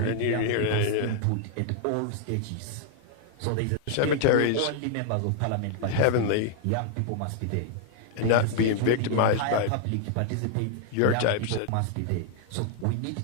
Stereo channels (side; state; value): both; different; correlation 0.00